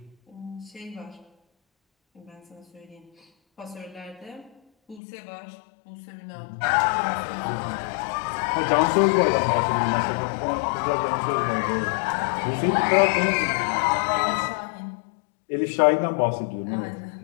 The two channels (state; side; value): drops out; right; at 5.0 s